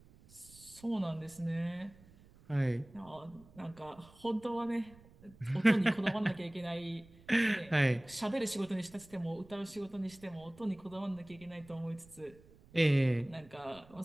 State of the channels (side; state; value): right; noise; rumble, 24 dB below the sound